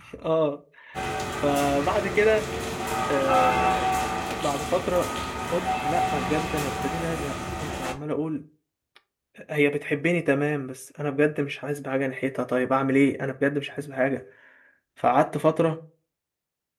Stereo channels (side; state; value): both; identical; correlation 1.00